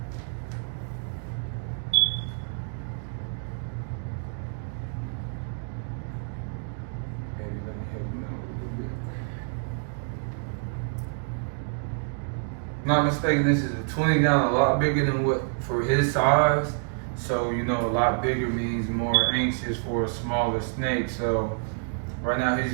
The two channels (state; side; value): silent; left; digital silence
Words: Not mistaken, this is a 20 gallon, a lot bigger than what for his size. So, you know, a lot bigger means more anxious for a smaller snake. So right now he's